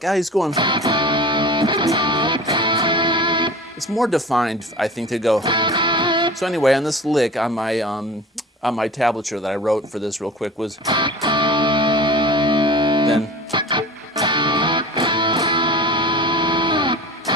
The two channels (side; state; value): both; normal; correlation 0.38